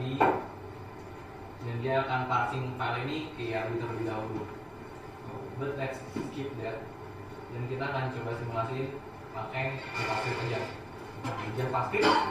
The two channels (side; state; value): both; identical; correlation 1.00